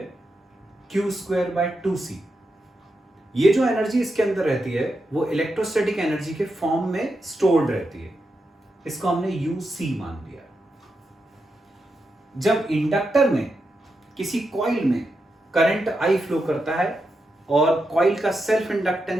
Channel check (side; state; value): both; normal; correlation 0.86